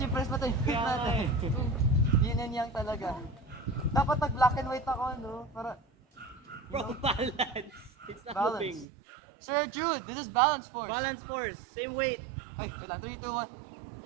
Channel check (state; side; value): drops out; left; at 8.8 s